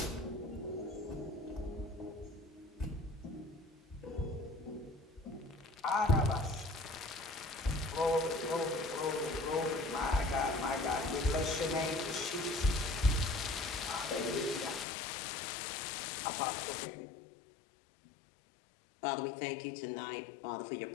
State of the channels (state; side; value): drops out; right; at 14.9 s